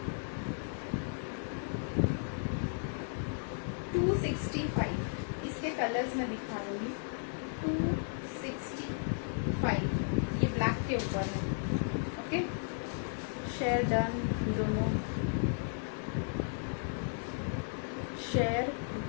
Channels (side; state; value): right; silent; digital silence